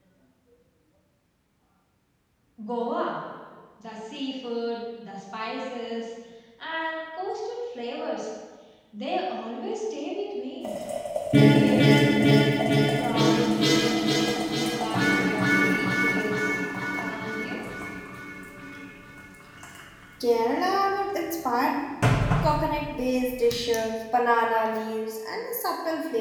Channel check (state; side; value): identical; both; correlation 1.00